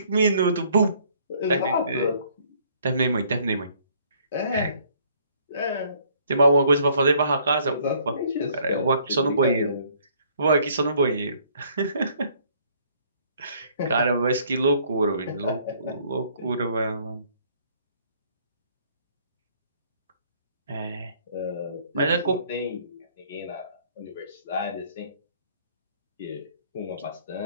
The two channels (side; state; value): both; inverted; correlation -0.62